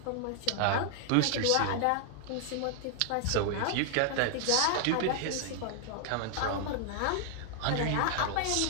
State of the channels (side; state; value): both; different; correlation 0.00